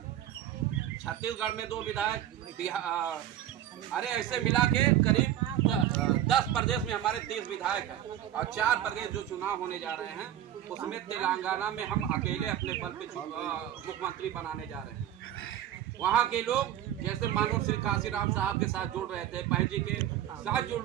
छत्तीसगढ़ में 2 विधायक, अरे ऐसे मिला के करीब 10 प्रदेश में हमारे 30 विधायक हैं। और 4 प्रदेश जो चुनाव होने जा रहे हैं, उसमें तेलंगाना में हम अकेले अपने बल पे मुख्यमंत्री बनाने जा रहे हैं। वहाँ के लोग जैसे मानव श्री काशीराम साहब के साथ जुड़ रहे थे, बहन जी के साथ जुड़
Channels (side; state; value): left; quieter; 11.7 dB